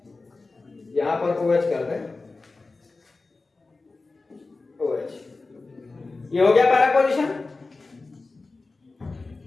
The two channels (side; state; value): right; quieter; 3.6 dB